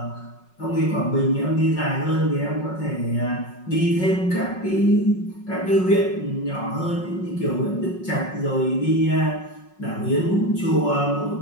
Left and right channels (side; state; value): right; late; 5.5 ms